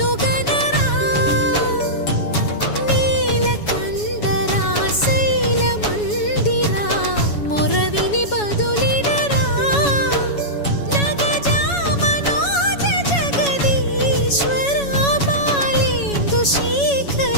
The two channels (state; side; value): late; right; 7.1 ms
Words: గనరా నీలకంఠరా శైల మందిరా మొరవిని బదులినరా నగజా మనోజ జగదీశ్వరా బాలేందు